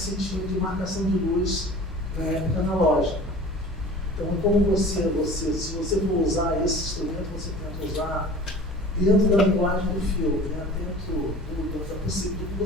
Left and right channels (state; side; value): normal; both; correlation 0.42